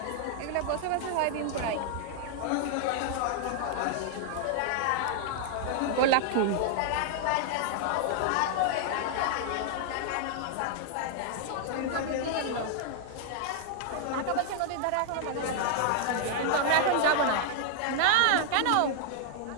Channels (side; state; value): both; different; correlation -0.01